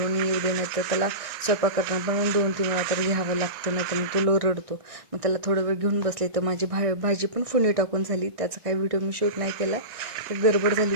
येऊ दे, नाही तर त्याला स्वयंपाक करताना पण 2-3 वेळा तर घ्यावं लागतं, नाही तर मग तो रडतो. मग त्याला थोडं वेळ घेऊन बसले. तर माझी भाजी पण फोडणी टाकून झाली. त्याचा काही व्हिडिओ मी शूट नाही केला, तर गडबड झाली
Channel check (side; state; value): left; late; 1.6 ms